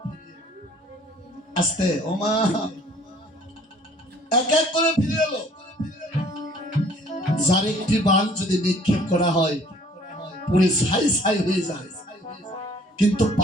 আস্তে ওমা, এক এক করে ফিরে এলো। যার একটি বাণ যদি নিক্ষেপ করা হয় পুরো ছাই ছাই হয়ে যায়, কিন্তু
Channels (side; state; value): both; normal; correlation 0.56